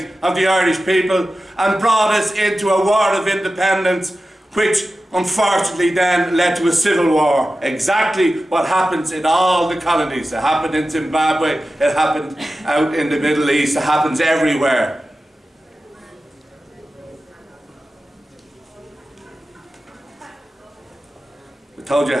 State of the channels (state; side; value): normal; both; correlation 0.94